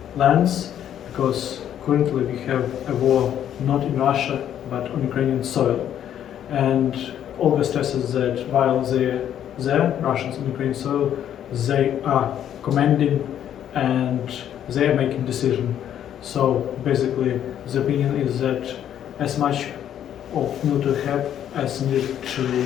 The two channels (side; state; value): right; quieter; 10.2 dB